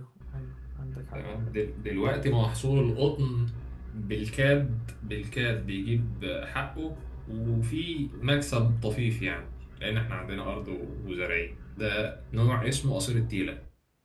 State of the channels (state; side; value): identical; both; correlation 1.00